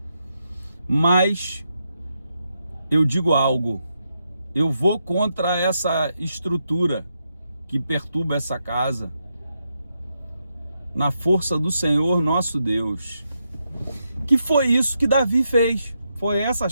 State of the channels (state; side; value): inverted; both; correlation -0.83